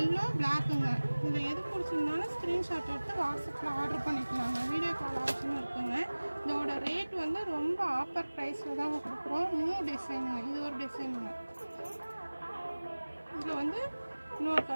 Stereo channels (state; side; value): inverted; both; correlation -1.00